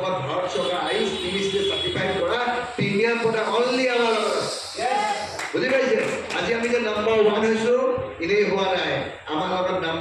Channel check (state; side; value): identical; both; correlation 1.00